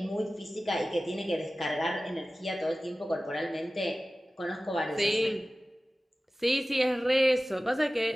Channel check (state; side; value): normal; both; correlation 0.96